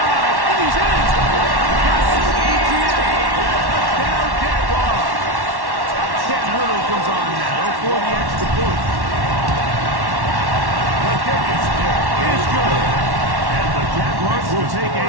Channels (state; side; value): late; left; 1.1 ms